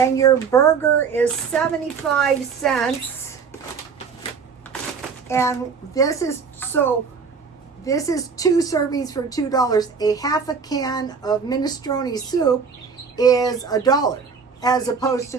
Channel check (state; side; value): quieter; left; 5.7 dB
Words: your burger is 75 cents, and this is 2 servings for $2. A half a can of minestrone soup is $1, as opposed to